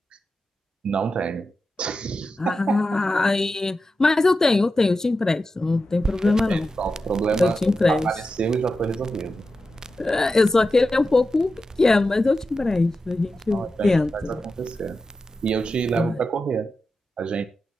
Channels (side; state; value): both; normal; correlation 0.91